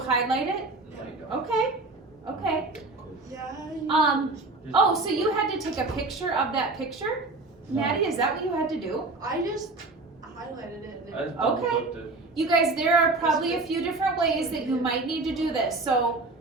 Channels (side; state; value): left; quieter; 3.3 dB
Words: it. Okay, okay. Yeah. Oh, so you had to take a picture of that picture? No. Maddie, is that what you had to do? I just highlighted it. And I just double Okay. clicked it. You guys, there are probably a few different ways that you might need to do this. So